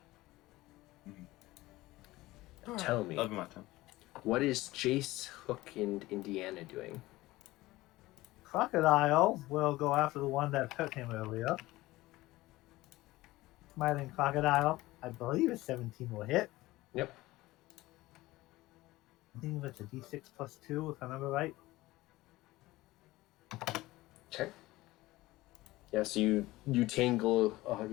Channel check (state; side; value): quieter; right; 18.5 dB